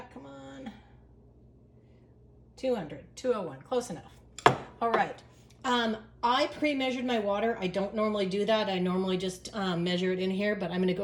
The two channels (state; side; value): identical; both; correlation 1.00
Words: come on. 200, 201, close enough. All right. I pre-measured my water. I don't normally do that. I normally just measure it in here, but I'm going to